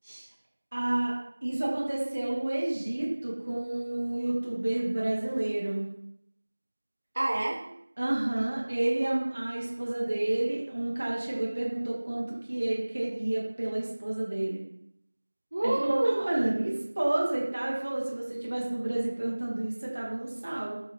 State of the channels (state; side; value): inverted; both; correlation -1.00